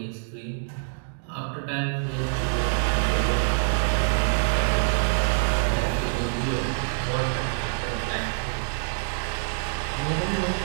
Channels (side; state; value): left; silent; 61 dB below the other